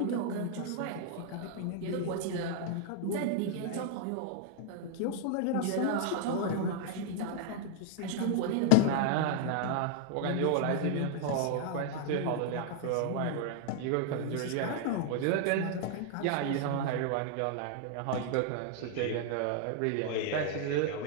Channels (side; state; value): both; different; correlation 0.00